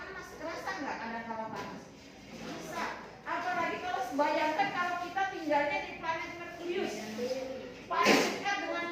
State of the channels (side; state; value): both; identical; correlation 1.00